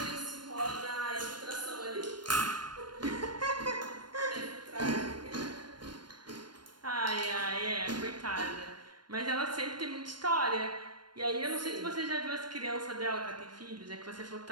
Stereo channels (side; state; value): left; late; 0.71 ms